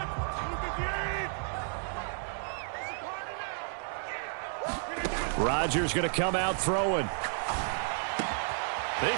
Rodgers going to come out throwing. He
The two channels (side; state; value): left; silent; digital silence